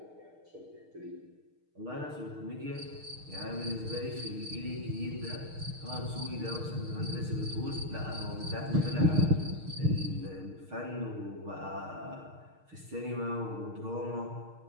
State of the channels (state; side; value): late; left; 6.5 ms